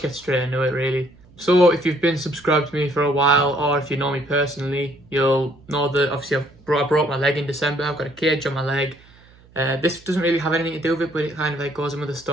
get straight into it really. So if you've been subscribed to me for a while, or if you know me personally, you'll know that obviously I broke my leg in December. I've got a cage on my leg. This doesn't really have anything to do with it, but it kind of like goes in with the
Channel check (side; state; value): right; noise; hum, 27 dB below the sound